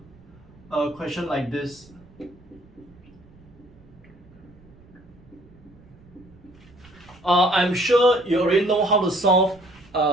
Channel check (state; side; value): noise; right; rumble, 25 dB below the sound